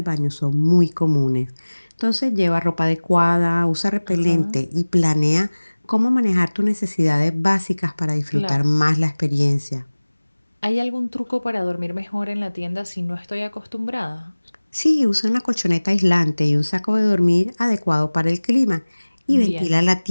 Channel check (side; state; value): both; inverted; correlation -1.00